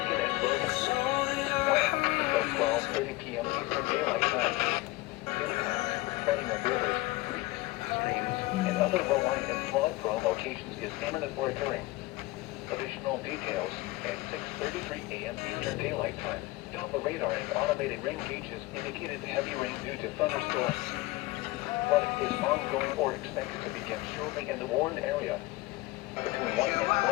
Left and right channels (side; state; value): right; quieter; 19.9 dB